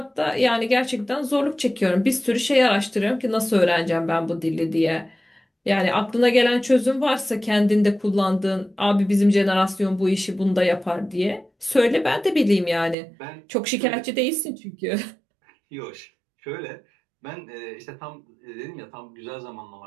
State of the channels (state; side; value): drops out; left; at 13.0 s